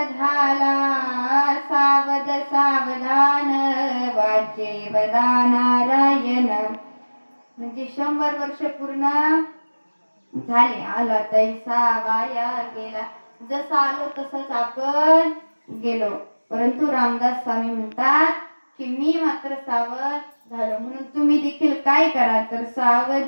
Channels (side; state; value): both; inverted; correlation -1.00